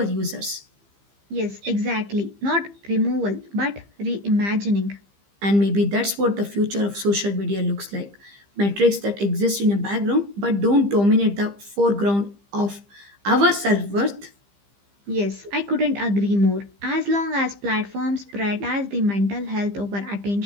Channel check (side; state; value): left; late; 15 ms